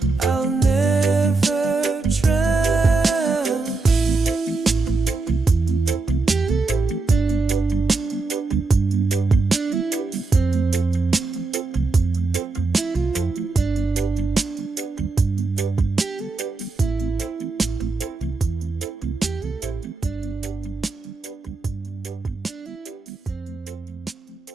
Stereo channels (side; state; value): left; quieter; 3.7 dB